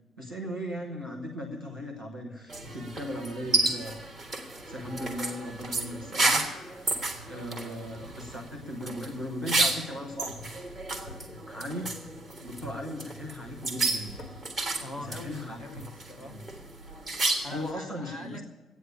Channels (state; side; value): normal; both; correlation 0.63